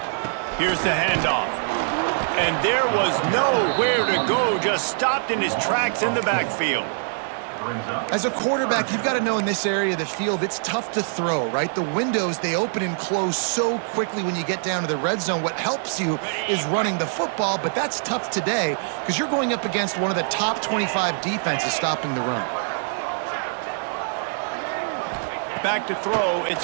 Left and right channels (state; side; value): silent; left; digital silence